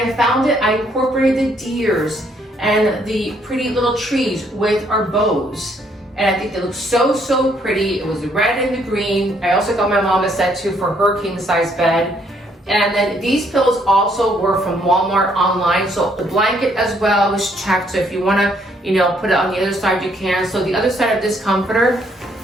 found it, I incorporated the deers and the pretty little trees with our bows. And I think they look so pretty. It was the red and the green. I also got my mom a set too for her king size bed. And then these pillows also were from Walmart online. So the blanket as well was checked. So if you wanna, you know, put it on the other side, you can. So the other side of this comforter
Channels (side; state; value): both; normal; correlation 0.68